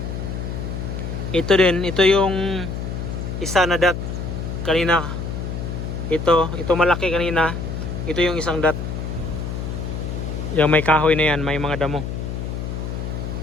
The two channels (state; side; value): noise; left; hum, 5 dB below the sound